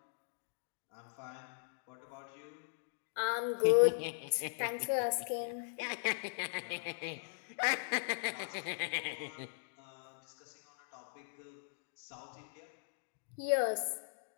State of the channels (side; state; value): right; silent; digital silence